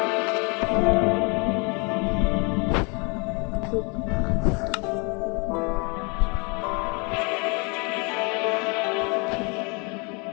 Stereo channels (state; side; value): quieter; right; 32.4 dB